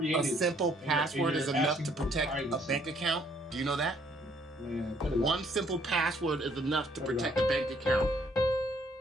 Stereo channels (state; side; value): normal; both; correlation 0.65